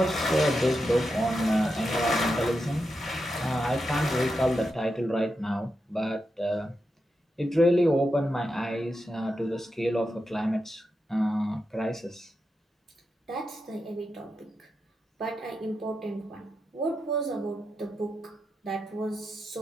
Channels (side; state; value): both; normal; correlation 0.87